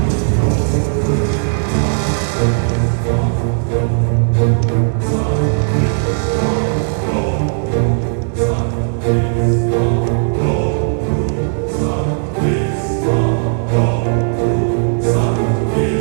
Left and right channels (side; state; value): left; silent; digital silence